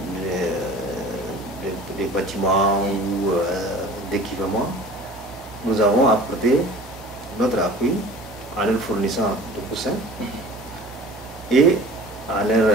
bâtiments ou d'équipements. Nous avons apporté notre appui en leur fournissant de coussins et en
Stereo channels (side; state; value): both; normal; correlation 0.43